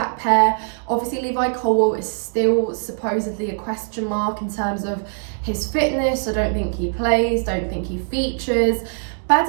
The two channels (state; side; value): silent; left; digital silence